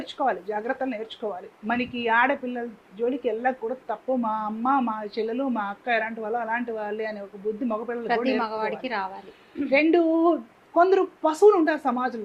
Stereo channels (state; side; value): identical; both; correlation 1.00